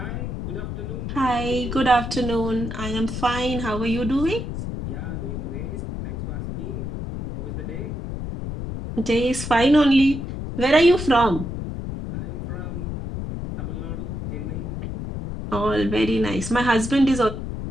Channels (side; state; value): left; noise; rumble, 6 dB below the sound